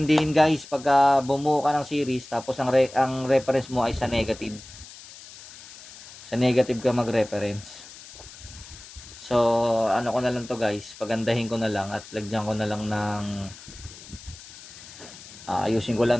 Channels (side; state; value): left; noise; hiss, 17 dB below the sound